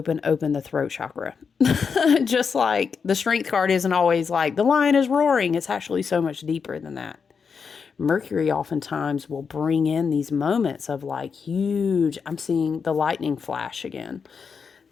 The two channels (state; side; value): quieter; right; 5.9 dB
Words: throat chakra. Just like the strength card isn't always like the lion is roaring. It's actually so much deeper than that. Mercury oftentimes will bring in these moments of like huge, I'm seeing the lightning flash again.